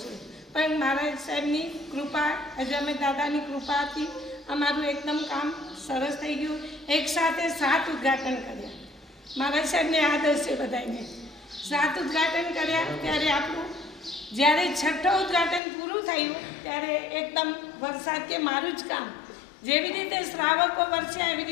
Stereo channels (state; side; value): drops out; right; at 15.6 s